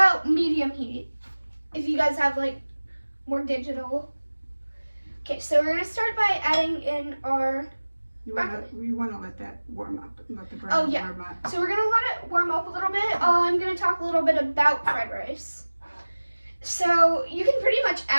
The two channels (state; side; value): inverted; both; correlation -1.00